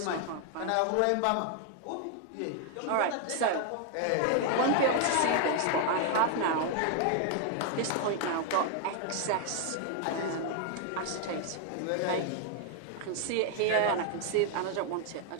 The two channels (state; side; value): different; both; correlation 0.00